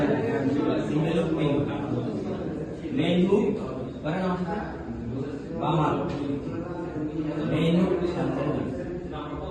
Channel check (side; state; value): both; identical; correlation 1.00